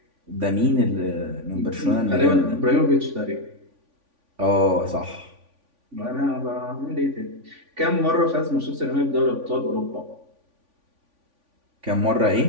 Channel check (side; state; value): left; late; 3.5 ms